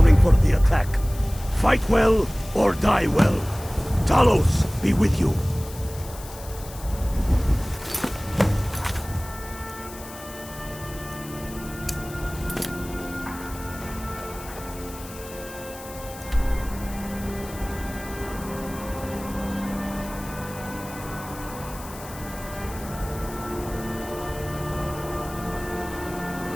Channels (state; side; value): noise; left; hiss, 16 dB below the sound